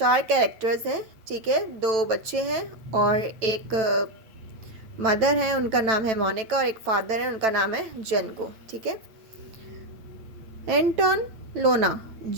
कैरेक्टर्स हैं, ठीक है। दो बच्चे हैं और एक मदर है, उनका नाम है मोनिका, और एक फादर है, उनका नाम है जेनको, ठीक है। Anton Lona,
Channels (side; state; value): left; late; 9.1 ms